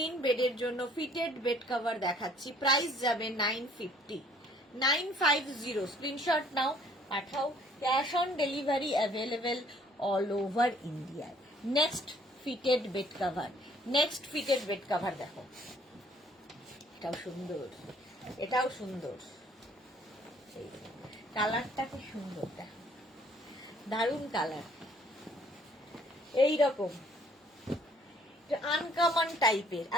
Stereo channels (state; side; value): normal; both; correlation 0.60